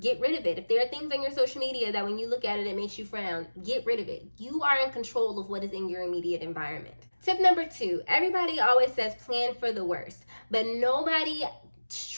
rid of it. If there are things on your social media that when you look at it, it makes you frown, get rid of it. You are in control of what is in your immediate environment. Tip number two, everybody always says plan for the worst, but nobody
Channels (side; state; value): both; inverted; correlation -1.00